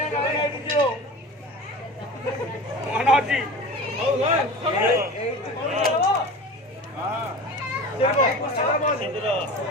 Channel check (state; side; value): normal; both; correlation 0.34